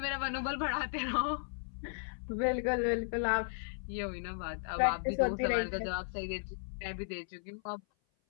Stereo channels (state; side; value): silent; right; 54 dB below the other